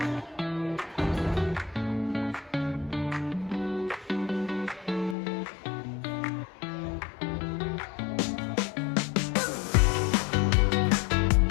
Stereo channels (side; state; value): right; drops out; at 5.2 s